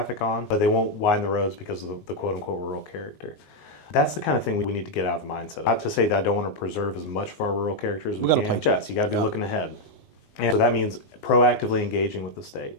on, but they won't widen the roads because of the quote unquote rural character. That's the kind of thing we need to get out of the mindset. Not to say that I don't want to preserve as much of our rural character as we can. Yes, you got to be looking ahead. And so that means proactively engaging with the state.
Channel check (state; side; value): late; right; 19 ms